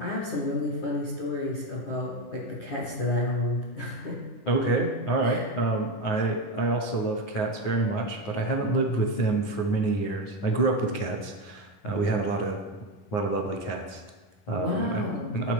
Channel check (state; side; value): late; right; 9.6 ms